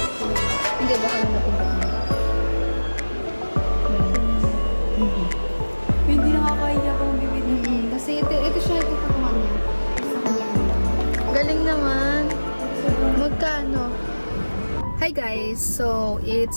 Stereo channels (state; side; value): inverted; both; correlation -1.00